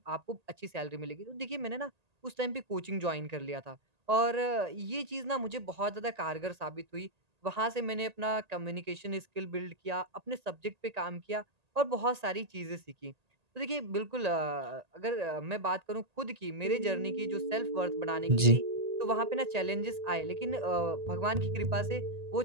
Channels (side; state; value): left; late; 1.8 ms